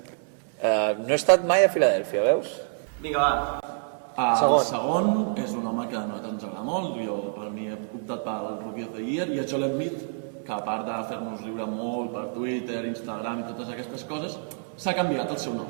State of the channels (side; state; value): left; silent; 60 dB below the other